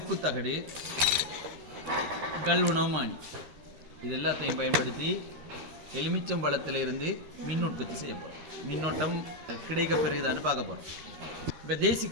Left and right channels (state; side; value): late; left; 13 ms